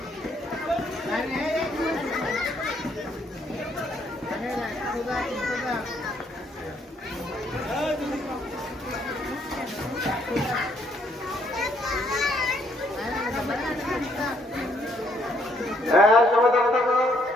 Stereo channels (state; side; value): normal; both; correlation 0.69